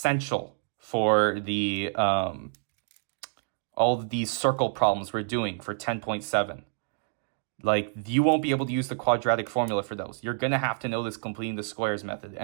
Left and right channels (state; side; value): silent; left; digital silence